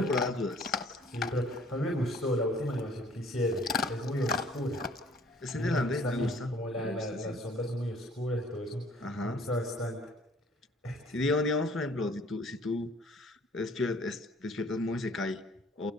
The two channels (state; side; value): normal; both; correlation 0.55